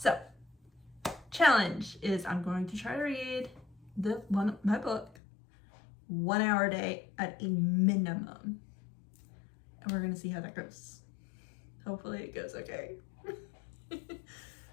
challenge is I'm going to try to read my book 1 hour a day at a minimum. And we're gonna see how that goes. Hopefully it goes okay.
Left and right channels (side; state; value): right; drops out; at 5.2 s